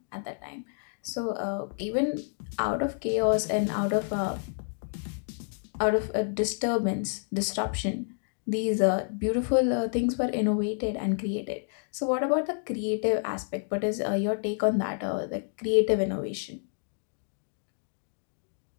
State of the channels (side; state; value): right; silent; digital silence